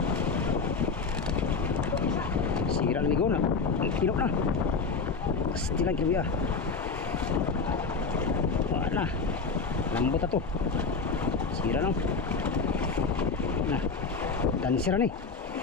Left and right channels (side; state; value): right; quieter; 4.6 dB